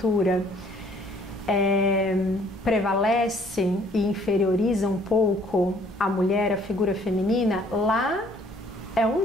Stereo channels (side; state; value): both; normal; correlation 0.60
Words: prevalece e inferioriza um pouco a mulher, a figura feminina, lá é